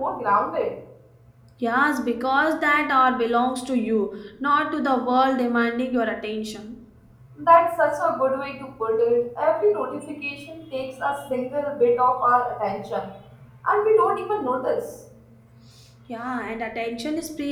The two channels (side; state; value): both; identical; correlation 1.00